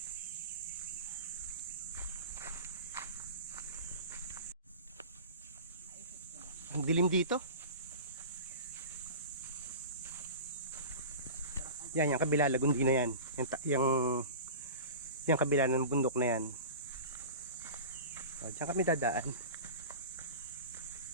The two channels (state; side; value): inverted; both; correlation -0.33